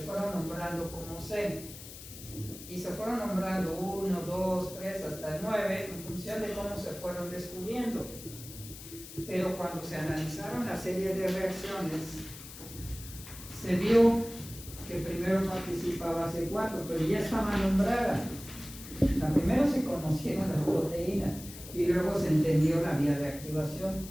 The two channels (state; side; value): noise; left; hiss, 14 dB below the sound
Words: nombrando como C y se fueron nombrando 1, 2, 3 hasta el 9 en función de cómo se fueron descubriendo. Pero cuando se analizaron la serie de reacciones, se vio que primero participaba C4, pero ya estaba nombrada. Primero se conocieron las proteínas y luego se entendió la vía de